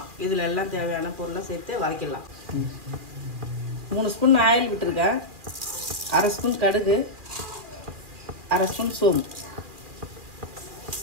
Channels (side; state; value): left; late; 2.4 ms